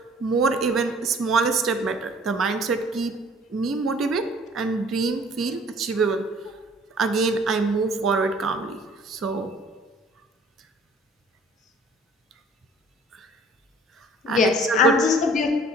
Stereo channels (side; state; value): both; normal; correlation 0.52